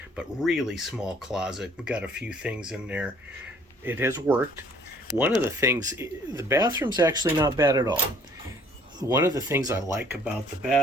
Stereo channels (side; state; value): both; normal; correlation 0.57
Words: But really small closet. We've got a few things in there. It has worked. One of the things, the bathroom's actually not bad at all. One of the things I like about the